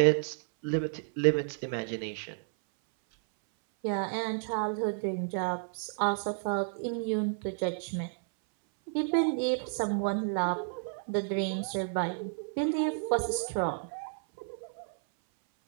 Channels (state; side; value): silent; left; 57 dB below the other